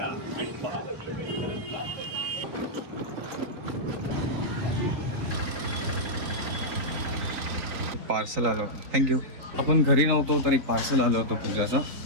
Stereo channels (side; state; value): left; late; 4.0 ms